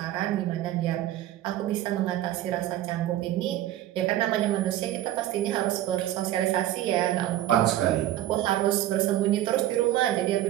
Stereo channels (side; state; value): left; quieter; 13.6 dB